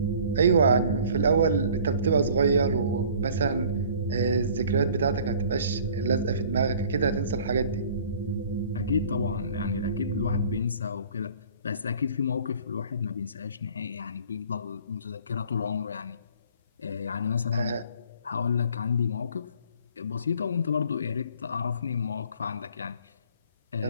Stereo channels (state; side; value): inverted; both; correlation -0.51